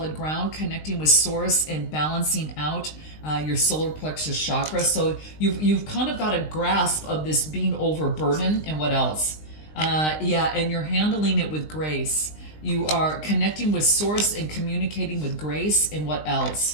ground, connecting with source and balancing out your solar plexus chakra. So you've kind of got a grasp of this being overburdened. And what else? And you're handling it with grace. You are connecting with source and communicating with grace. And what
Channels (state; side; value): late; right; 19 ms